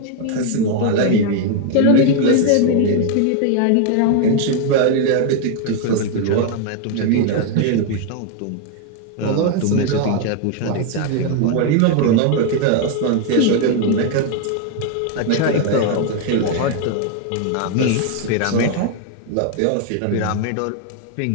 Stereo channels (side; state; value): both; different; correlation 0.00